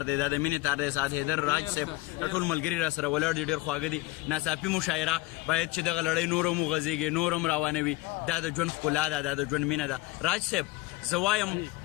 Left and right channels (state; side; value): quieter; right; 20.3 dB